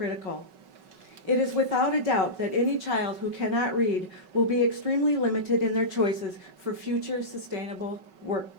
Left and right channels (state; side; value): late; left; 5.3 ms